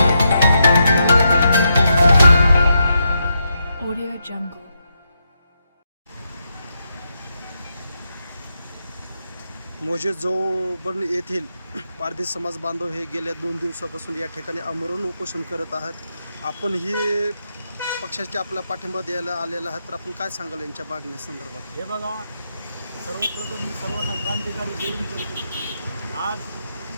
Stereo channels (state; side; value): inverted; both; correlation -0.83